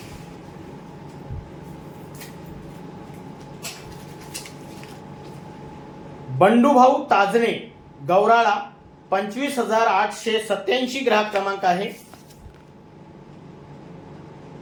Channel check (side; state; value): both; identical; correlation 1.00